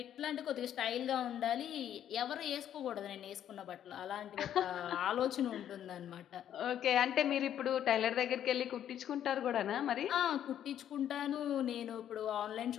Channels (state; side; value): quieter; right; 10.4 dB